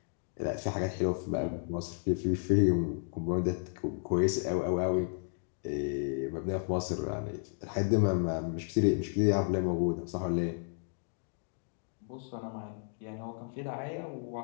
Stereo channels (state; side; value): silent; right; 56 dB below the other